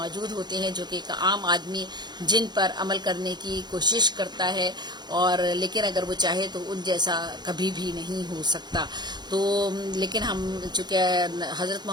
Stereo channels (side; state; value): left; late; 0.21 ms